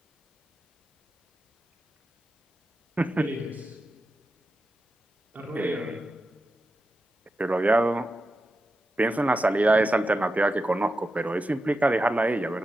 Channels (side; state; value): both; normal; correlation 0.90